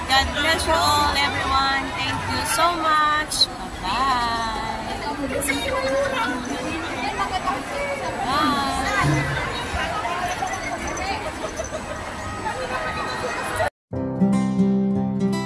God bless you all, everyone. Thank you so much. Bye-bye.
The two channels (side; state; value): both; identical; correlation 1.00